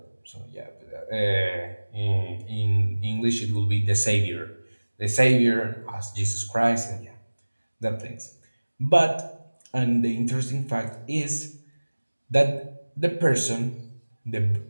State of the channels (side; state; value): both; inverted; correlation -1.00